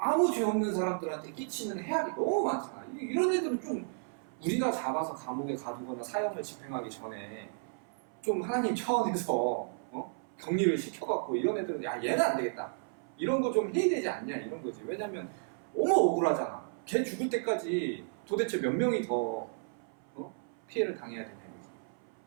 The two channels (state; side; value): silent; left; 56 dB below the other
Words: 죄 없는 사람들한테 끼치는 해악이 너무 많잖아. 이런 애들은 좀 우리가 잡아서 감옥에 가두거나 사형을 집행하기 전에 좀 하나님 차원에서 격리를 시켜갖고, 이런 애들은 야 얘는 안 되겠다, 이런 거 좀 해야 되지 않냐, 이런 거지. 왜냐면 너무 억울하잖아. 걔 죽을 때까지 도대체 몇 명이 더 피해를 당해야 되냐 이거지.